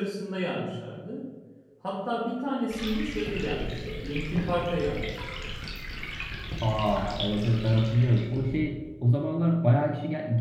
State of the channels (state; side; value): identical; both; correlation 1.00